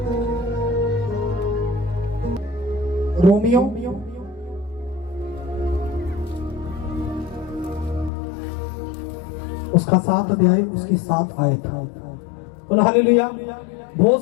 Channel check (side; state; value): right; drops out; at 8.1 s